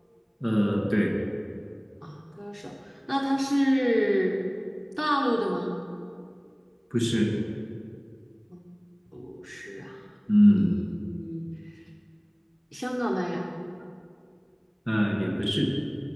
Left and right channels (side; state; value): both; identical; correlation 1.00